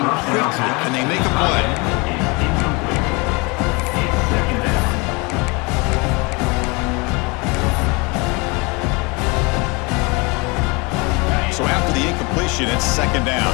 quickly. Can they make a play? So after the incompletion, it's 2nd down.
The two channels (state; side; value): quieter; right; 28.1 dB